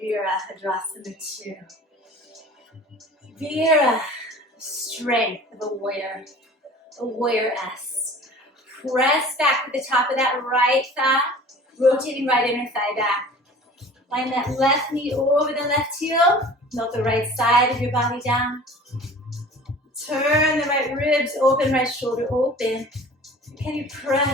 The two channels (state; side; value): normal; both; correlation 0.44